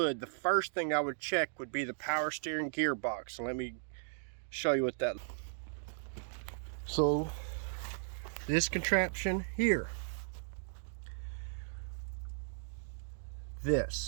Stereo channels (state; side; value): silent; left; digital silence